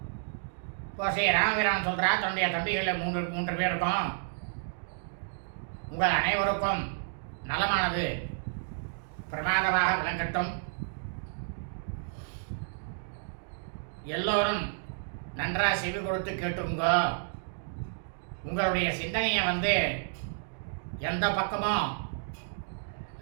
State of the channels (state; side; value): silent; left; digital silence